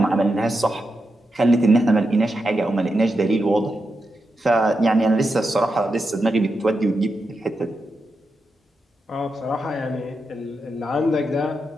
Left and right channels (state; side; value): normal; both; correlation 0.87